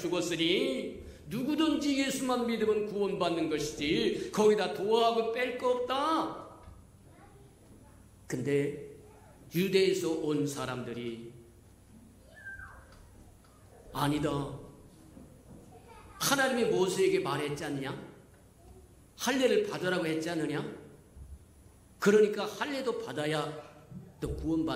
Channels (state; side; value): identical; both; correlation 1.00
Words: 누구든지 예수만 믿으면 구원받는 것이지 거기다 도하고 뺄 거 없다. 근데 유대에서 온 사람들이 아니다. 하나님이 모세에게 말했지 않냐? 할례를 받으라고 했지 않느냐? 그러니까 할례도 받아야 또